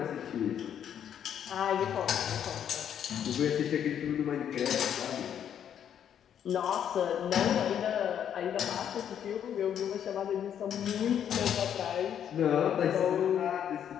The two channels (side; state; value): right; quieter; 9.2 dB